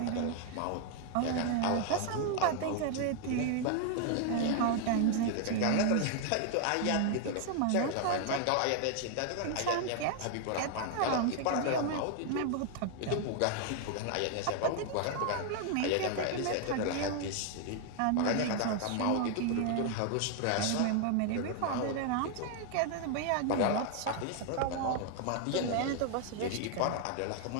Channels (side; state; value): both; different; correlation 0.00